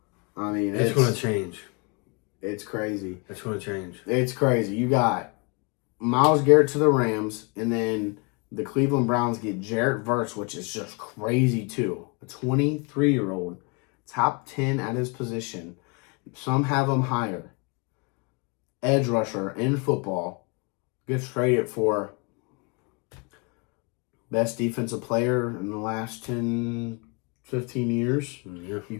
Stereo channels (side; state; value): right; quieter; 32.2 dB